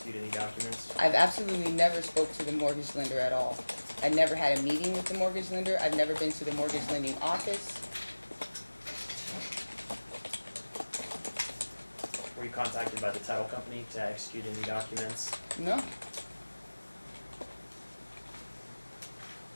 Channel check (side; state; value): both; inverted; correlation -1.00